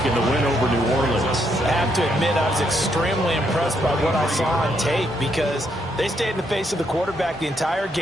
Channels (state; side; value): normal; both; correlation 0.75